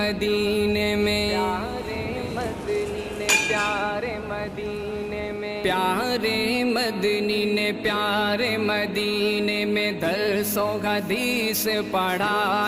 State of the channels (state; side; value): identical; both; correlation 1.00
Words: میں، پیارے مدنی نے پیارے مدینے میں، پیارے مدنی نے پیارے مدینے میں درس و حدیث